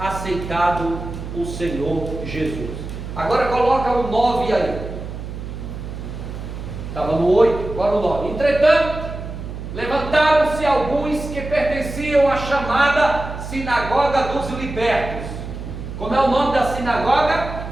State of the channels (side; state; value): right; noise; hum, 9 dB below the sound